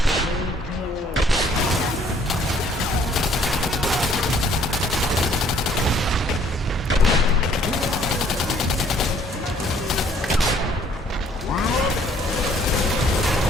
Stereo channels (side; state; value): both; normal; correlation 0.61